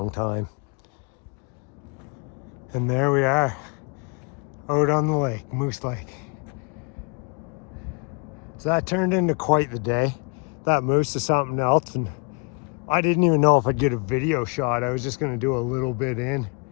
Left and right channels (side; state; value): right; quieter; 33.7 dB